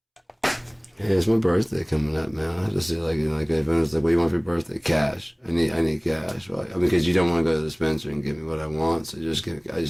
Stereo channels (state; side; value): identical; both; correlation 1.00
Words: Hey, it's my birthday coming up, man. I have to see like, you know, like if anyone's like, what do you want for your birthday? Cash. I need cash. Right? I mean, because you don't want to go to the dispenser and give me what I want, so I just need